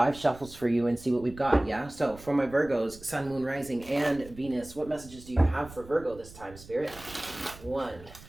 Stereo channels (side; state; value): right; noise; rumble, 19 dB below the sound